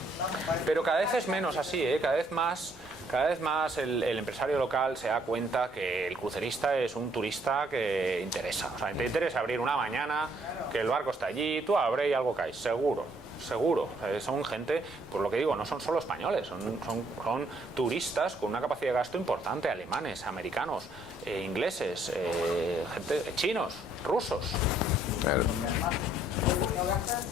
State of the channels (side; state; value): both; normal; correlation 0.66